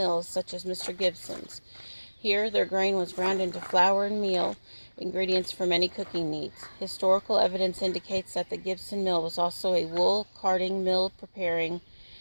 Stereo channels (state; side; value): inverted; both; correlation -1.00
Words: such as Mr. Gibson's. Here, their grain was ground into flour and meal, ingredients for many cooking needs. Historical evidence indicates that the Gibson mill was also a wool carding mill preparing